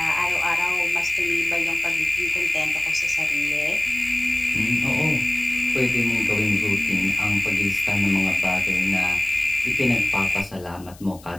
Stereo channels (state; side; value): noise; left; hiss, 23 dB below the sound